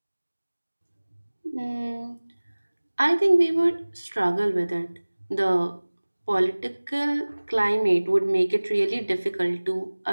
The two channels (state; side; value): inverted; both; correlation -1.00